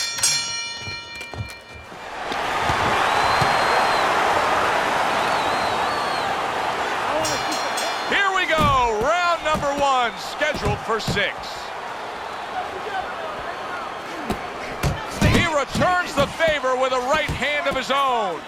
Here we go, round number 1, scheduled for 6. He returns the favor with a right hand of his own.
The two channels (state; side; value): identical; both; correlation 1.00